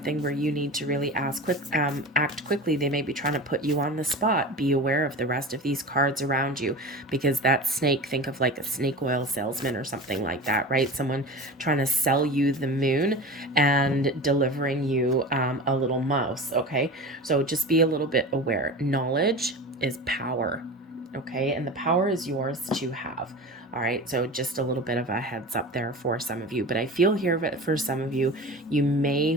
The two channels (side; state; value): both; normal; correlation 0.32